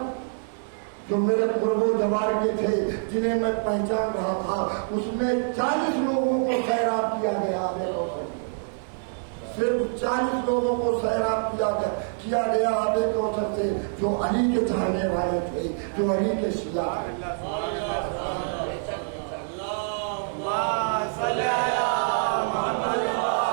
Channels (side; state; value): left; silent; digital silence